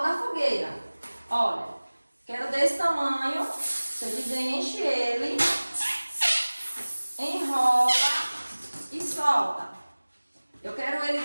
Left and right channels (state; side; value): inverted; both; correlation -1.00